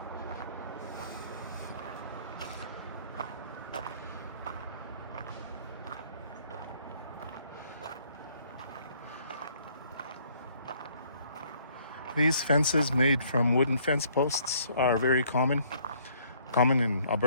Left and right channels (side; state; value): both; inverted; correlation -0.63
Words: These fences made from wooden fence posts are very common in